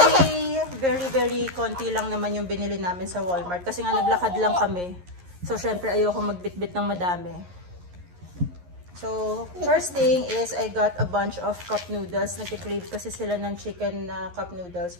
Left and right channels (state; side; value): late; left; 11 ms